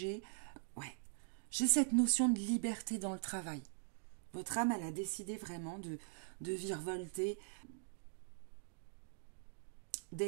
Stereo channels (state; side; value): silent; left; digital silence